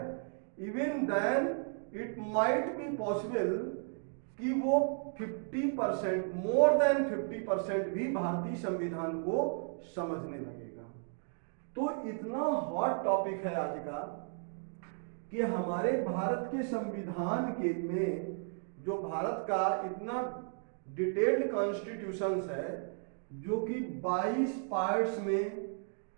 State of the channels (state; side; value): silent; left; 55 dB below the other